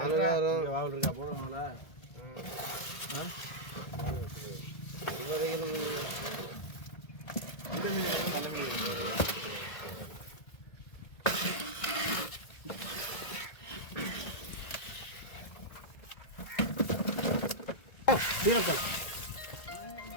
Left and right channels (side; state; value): right; late; 1.8 ms